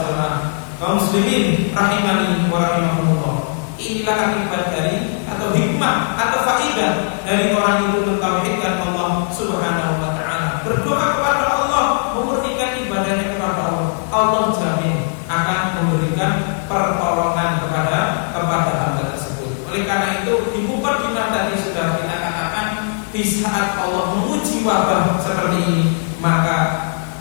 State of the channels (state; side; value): silent; right; digital silence